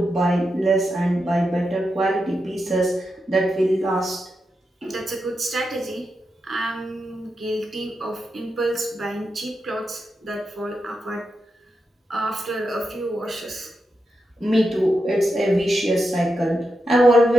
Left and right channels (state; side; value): normal; both; correlation 0.87